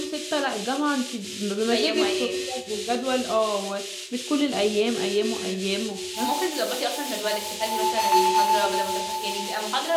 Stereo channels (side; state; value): both; identical; correlation 1.00